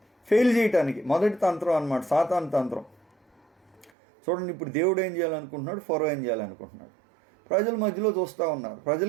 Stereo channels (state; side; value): drops out; left; at 3.9 s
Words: ఫెయిల్ చేయటానికి మొదటి తంత్రం అన్నమాట, సాతాను తంత్రం. చూడండి, ఇప్పుడు దేవుడు ఏం చేయాలనుకుంటున్నాడు, ఫరో ఏం చేయాలనుకుంటున్నాడు. ప్రజల మధ్యలో చూస్తూ ఉన్నారు.